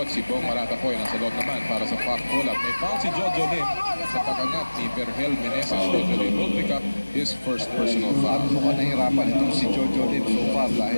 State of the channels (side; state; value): both; inverted; correlation -1.00